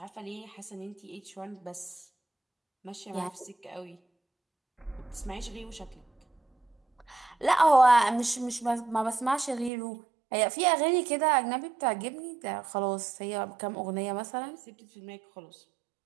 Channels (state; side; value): drops out; left; at 9.7 s